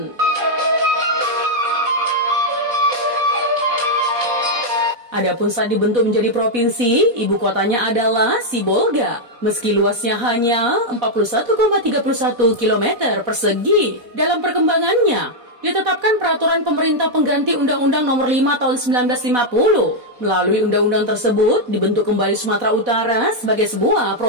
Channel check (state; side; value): late; left; 4.1 ms